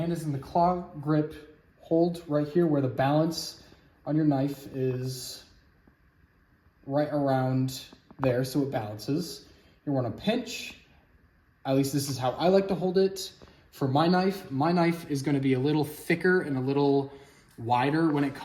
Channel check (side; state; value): both; identical; correlation 1.00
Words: is in the claw grip. Hold right here where the balance on your knife is right around there so it balances. You want to pinch. At least this is how I like to hold it. For my knife is going to be a little thicker and a little wider when it